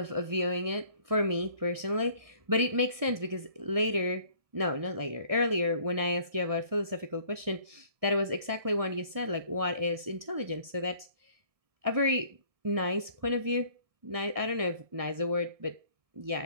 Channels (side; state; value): left; late; 1.6 ms